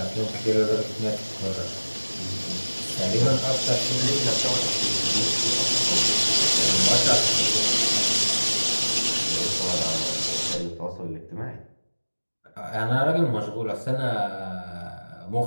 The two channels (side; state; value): both; inverted; correlation -1.00